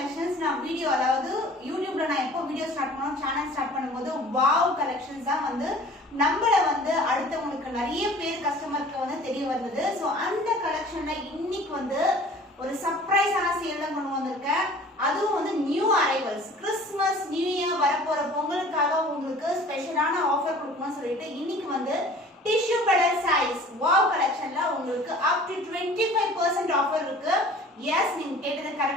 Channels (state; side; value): normal; both; correlation 0.47